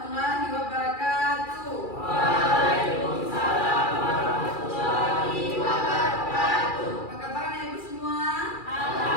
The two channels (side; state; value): right; late; 2.4 ms